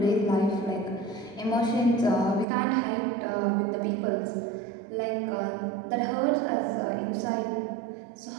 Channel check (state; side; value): drops out; left; at 2.5 s